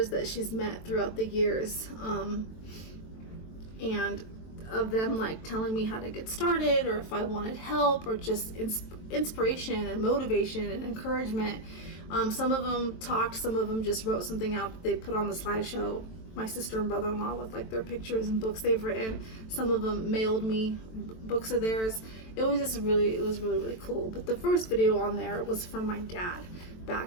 that she's met throughout the years, and of them like telling me how to get started, or if I wanted help, or just inspiration and motivation and encouragement. Some of them talked, some of them just wrote something out that they put on the slideshow. My sister and brother-in-law with like their pictures and books they've written. Some of them mailed me books of theirs. It was really cool. But the first video on there was from my dad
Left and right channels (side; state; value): right; late; 23 ms